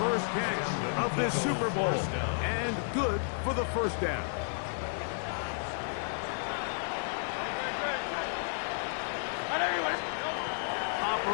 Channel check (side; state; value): right; silent; digital silence